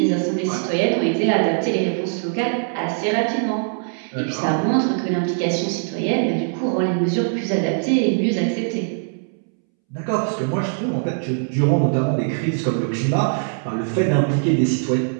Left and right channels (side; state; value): left; silent; 65 dB below the other